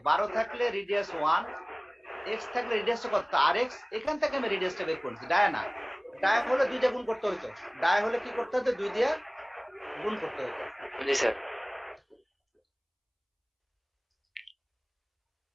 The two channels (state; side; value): identical; both; correlation 1.00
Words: 12 থাকলে রেডিয়াস 1, এক্স থাকলে রেডিয়াসটা কত? আর এক্স। এখান থেকে আমি রেডিয়াসটা বের করছি, ডায়া না। ডায়া হলে 2 দিয়ে গুণ করতে হতো, ডায়া হলে কি করতে হতো? 2 দিয়ে গুণ করতে হতো। জি স্যার।